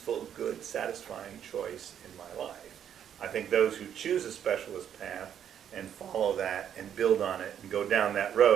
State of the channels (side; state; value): left; quieter; 9.2 dB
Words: good, satisfying choice in my life. I think those who choose a specialist path and follow that and build on it and go down that